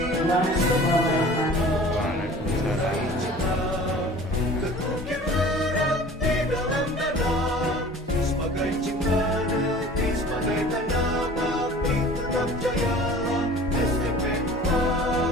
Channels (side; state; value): both; normal; correlation 0.44